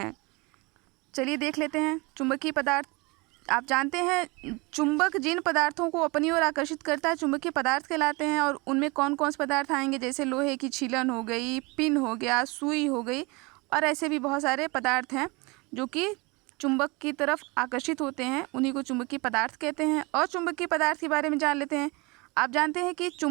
चलिए देख लेते हैं। चुंबकीय पदार्थ, आप जानते हैं चुंबक जिन पदार्थों को अपनी ओर आकर्षित करता है चुंबकीय पदार्थ कहलाते हैं। और उनमें कौन कौन से पदार्थ आएंगे, जैसे लोहे की छीलन हो गई, पिन हो गया, सुई हो गई, और ऐसे भी बहुत सारे पदार्थ हैं जो कि चुंबक की तरफ आकर्षित होते हैं, उन्हीं को चुंबकीय पदार्थ कहते हैं। अचुंबकीय पदार्थ के बारे में जान लेते हैं। आप जानते हैं कि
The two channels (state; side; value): quieter; left; 26.5 dB